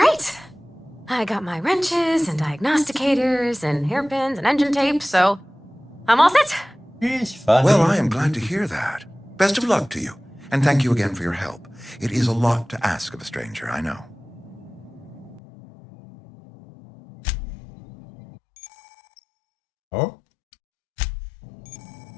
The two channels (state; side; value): drops out; right; at 15.4 s